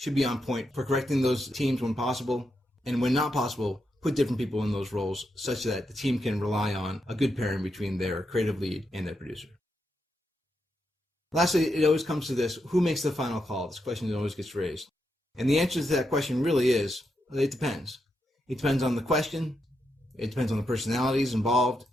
should be on point for correcting those teams when possible. And when not possible, put different people in those roles such that the team can rely on a good pairing between their creative lead and their producer. Lastly, it always comes to this, who makes the final call? This question always gets raised. And the answer to that question really is, it depends. It depends on the question. It depends on the personalities involved,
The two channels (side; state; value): both; normal; correlation 0.83